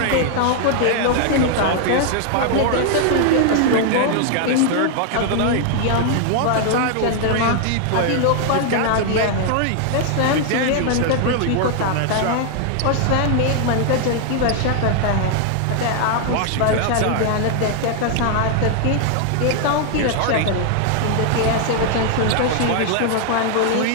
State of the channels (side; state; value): both; different; correlation 0.00